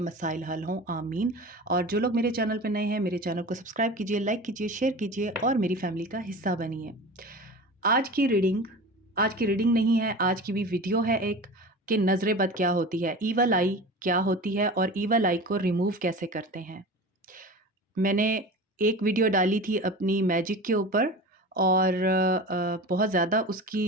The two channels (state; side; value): normal; both; correlation 0.33